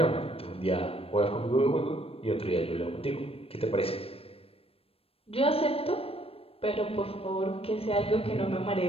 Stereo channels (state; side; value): late; right; 0.28 ms